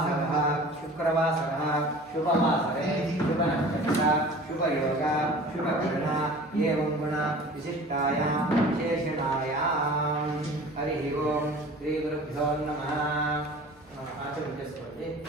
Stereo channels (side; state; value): both; normal; correlation 0.42